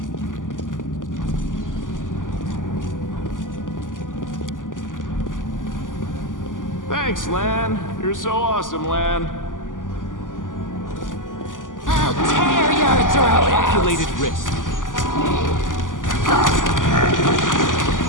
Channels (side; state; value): right; late; 0.88 ms